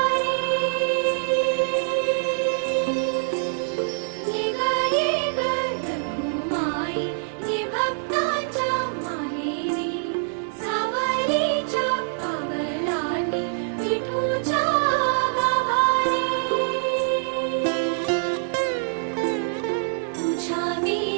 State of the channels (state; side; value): silent; left; digital silence